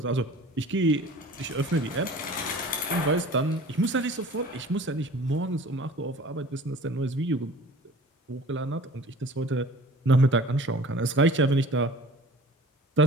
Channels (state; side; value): normal; both; correlation 0.45